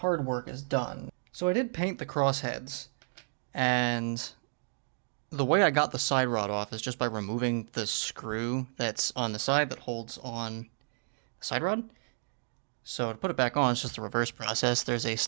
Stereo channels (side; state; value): left; silent; digital silence